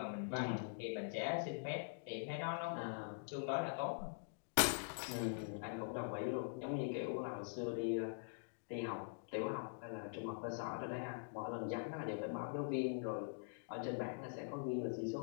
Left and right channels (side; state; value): right; silent; digital silence